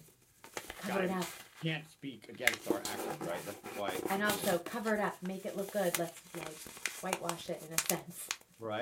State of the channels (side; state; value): both; identical; correlation 1.00